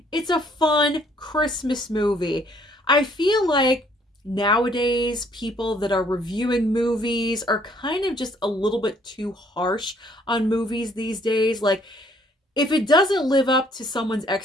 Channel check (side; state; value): both; normal; correlation 0.63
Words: It's a fun Christmas movie. I feel like nowadays people that are reviewing movies are kind of just a little bit too harsh on movies these days. Like, if it doesn't live up to someone's